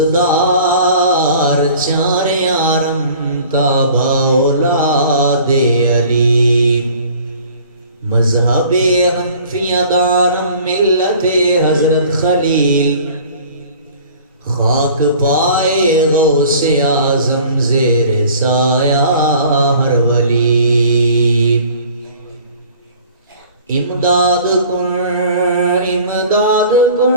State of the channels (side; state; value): both; inverted; correlation -0.49